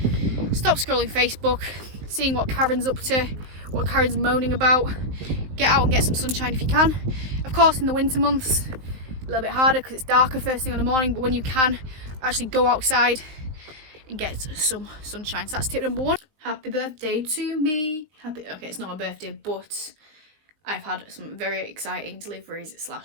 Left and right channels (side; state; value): left; late; 19 ms